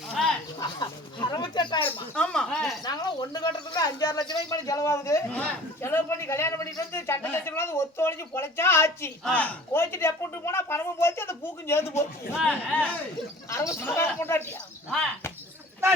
68,000 ஆமா நாங்களும் ஒண்ணு கட்டுறதுக்கு 5-6 லட்சம் ரூபாய்க்கு மேல செலவாகுது செலவு பண்ணி கல்யாணம் பண்ணிட்டு வந்து சண்டை லட்சம் ஒத்து ஒழிஞ்சு பொழைச்சா ஆச்சு கோச்சிட்டு எப்பட்டு போனா பணமும் போச்சு அந்த பூக்கும் சேர்ந்து போச்சு 60,000 கொண்டாட்டியா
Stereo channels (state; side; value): normal; both; correlation 0.45